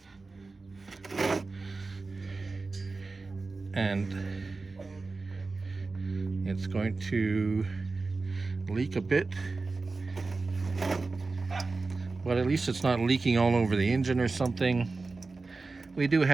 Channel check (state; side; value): quieter; left; 3.8 dB